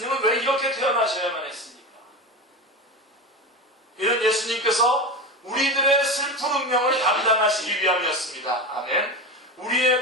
왜 이렇게 태어나셔야만 했습니까? 이는 예수님께서 우리들의 슬픈 운명을 감당하시기 위함이었습니다. 아멘.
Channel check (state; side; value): normal; both; correlation 0.23